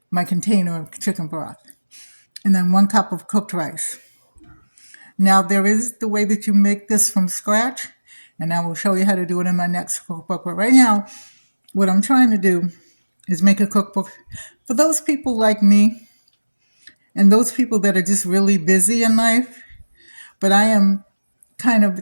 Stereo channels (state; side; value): inverted; both; correlation -1.00